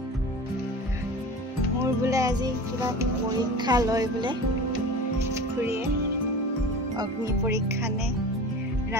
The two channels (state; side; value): normal; both; correlation 0.35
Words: মোৰ বোলে আজি কিবা পৰীক্ষা লয় বোলে খুৰীয়ে অগ্নি পৰীক্ষা নে